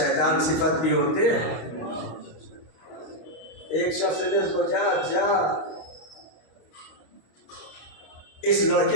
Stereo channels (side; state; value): right; late; 26 ms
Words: صفت بھی ہوتے ہیں۔ ایک شخص نے سوچا اچھا اس